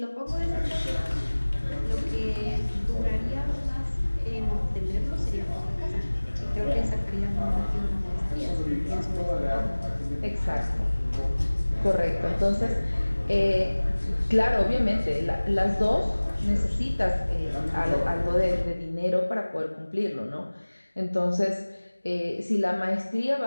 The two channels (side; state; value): both; inverted; correlation -1.00